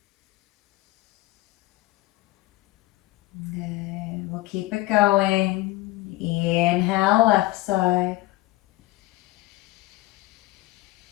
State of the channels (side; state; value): right; quieter; 18.6 dB